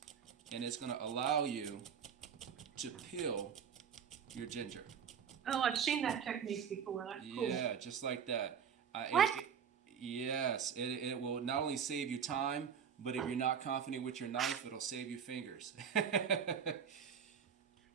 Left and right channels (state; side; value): quieter; left; 7.4 dB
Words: And it's going to allow you to peel your ginger. Oh, I've seen that technique before. That's cool. Yeah, just like that. What? Yes, it will not only save you time, but if you're not confident with your knife, it'll save you fingers.